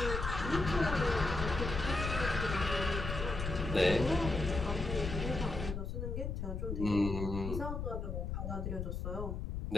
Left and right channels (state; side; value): noise; left; rumble, 4 dB below the sound